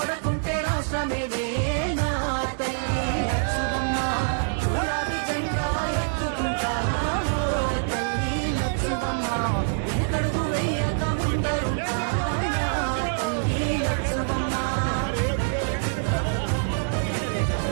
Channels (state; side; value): silent; left; 58 dB below the other